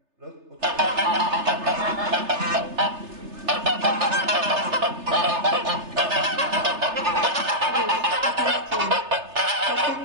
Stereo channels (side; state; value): left; late; 3.3 ms